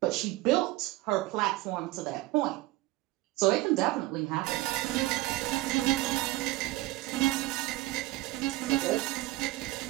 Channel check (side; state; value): left; quieter; 18.6 dB